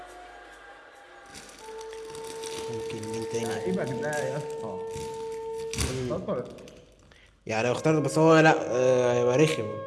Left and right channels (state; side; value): identical; both; correlation 1.00